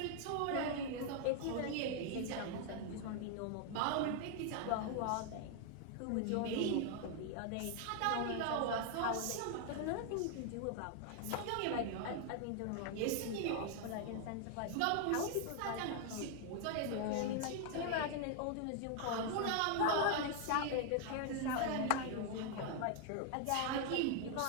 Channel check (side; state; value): both; different; correlation 0.00